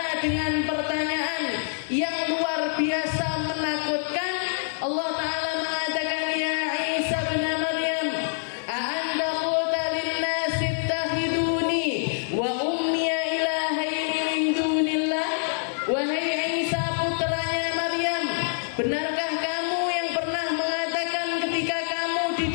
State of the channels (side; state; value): right; silent; 58 dB below the other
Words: dengan pertanyaan yang luar biasa menakutkan. Allah Ta'ala mengatakan, ya Isa bin Maryam, a'anta qulta linnasi ittakhiduni wa ummiya ilahaini min dunillah. Wahai Isa putranya Maryam, benarkah kamu yang pernah mengatakan ketika kamu di